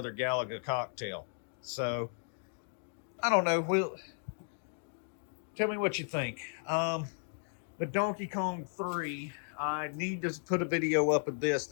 Galaga cocktail. So, I don't know. Tell me what you think. The Donkey Kong 3, I need to put a video up of this,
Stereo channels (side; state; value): right; silent; digital silence